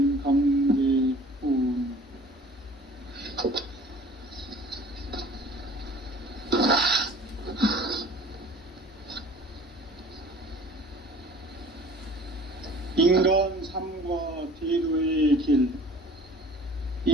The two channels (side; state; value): both; normal; correlation 0.47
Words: 강대훈. 인간 삶과 대도의 길.